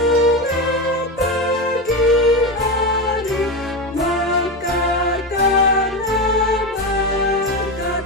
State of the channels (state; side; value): normal; both; correlation 0.17